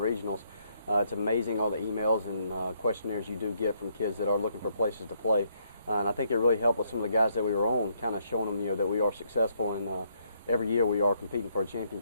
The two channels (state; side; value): inverted; both; correlation -0.72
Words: it's amazing all the emails and questionnaires you do get from kids that are looking for places to play. And I think it really helped with some of the guys that we were on, kind of showing them, that we are successful and every year we are competing for a